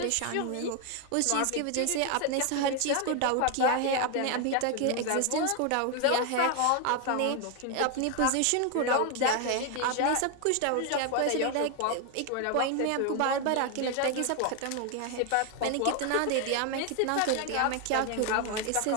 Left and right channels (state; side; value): different; both; correlation 0.01